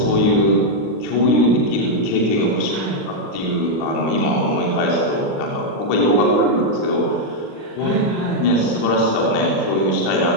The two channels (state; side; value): late; right; 39 ms